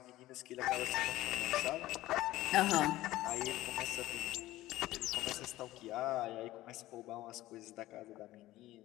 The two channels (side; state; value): right; quieter; 16.3 dB